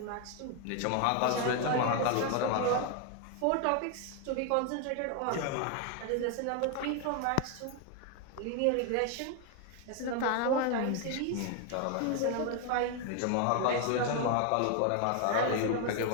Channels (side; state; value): both; different; correlation 0.01